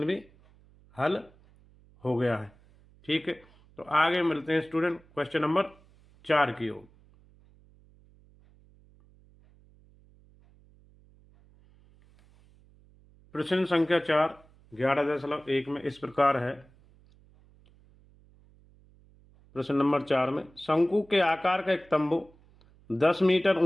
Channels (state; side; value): noise; right; hum, 28 dB below the sound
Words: भी हल हो गया है। ठीक है, तो आगे मिलते हैं स्टूडेंट क्वेश्चन नंबर 4 की ओर। प्रश्न संख्या 4 11.1 में इस प्रकार है। प्रश्न नंबर 4 में शंकु के आकार का एक तंबू 10 मीटर